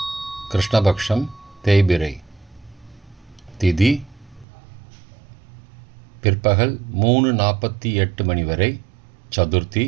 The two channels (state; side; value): drops out; left; at 4.5 s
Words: கிருஷ்ணபக்ஷம், தேய்பிரை. திதி பிற்பகல் 3:48 மணி வரை சதுர்த்தி,